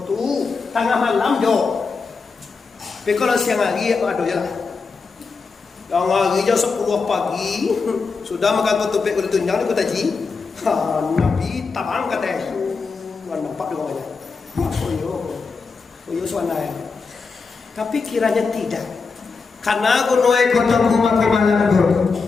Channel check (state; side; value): quieter; right; 4.7 dB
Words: tu tengah malam jo. Tapi kalau siang hari aduh ya. Yang hari jam 10 pagi sudah makan tutupik kulit tunjang di kota Ji. Nabi tabang kata nampak dua aja. Koyo suanaya. Tapi kiranya tidak. Karena gunoi kota kumakumalan